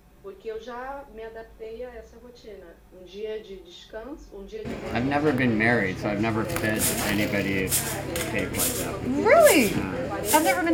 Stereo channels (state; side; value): identical; both; correlation 1.00